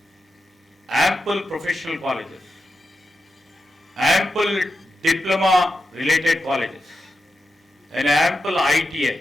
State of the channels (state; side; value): normal; both; correlation 0.89